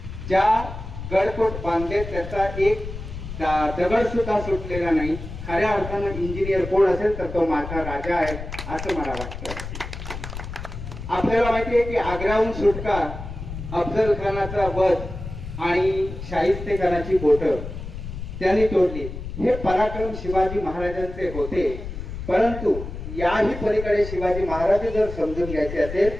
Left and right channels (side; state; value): left; noise; rumble, 9 dB below the sound